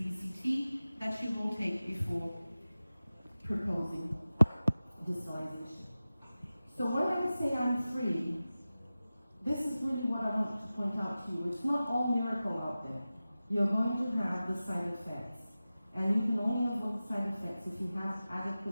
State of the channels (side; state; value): both; inverted; correlation -0.96